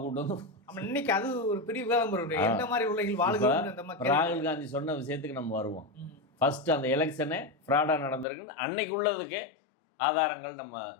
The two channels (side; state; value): right; drops out; at 8.2 s